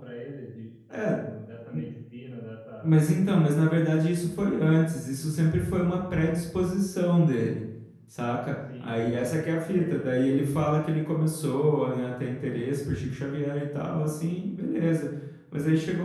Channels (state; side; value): identical; both; correlation 1.00